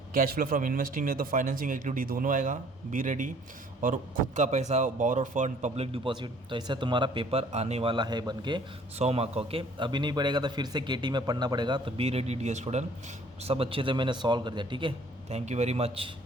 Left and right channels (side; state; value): both; normal; correlation 0.57